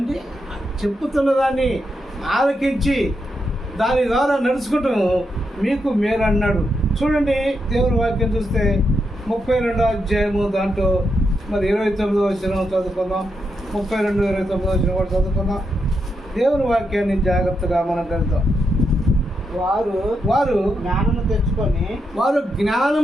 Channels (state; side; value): normal; both; correlation 0.83